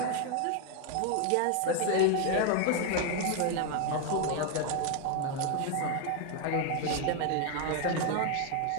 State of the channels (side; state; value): both; different; correlation 0.01